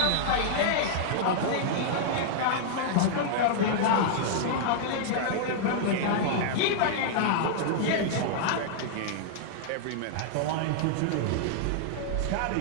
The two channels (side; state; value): both; different; correlation -0.01